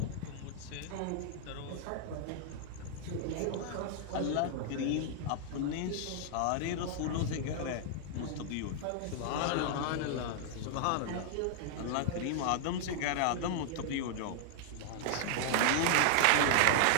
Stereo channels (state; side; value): different; both; correlation -0.01